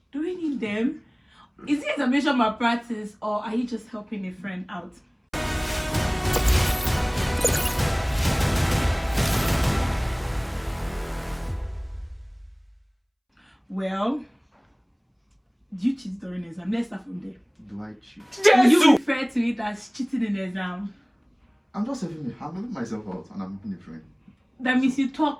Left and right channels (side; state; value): both; identical; correlation 1.00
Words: Do we need them? Is it examination malpractice, or are you just helping a friend out? Well, do you cheat during exam? Let's start from there. Do I cheat? Do you refer to it as cheating in exam? I'm just helping myself out and I'm helping a friend. That means you